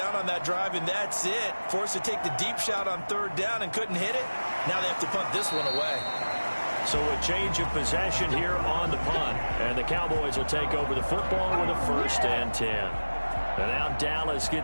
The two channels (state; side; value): inverted; both; correlation -1.00